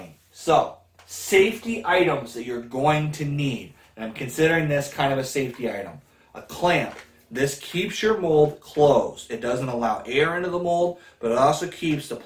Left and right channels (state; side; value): identical; both; correlation 1.00